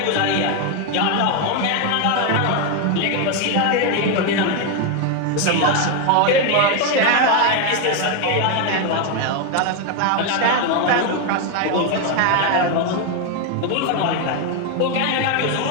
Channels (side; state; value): both; different; correlation 0.01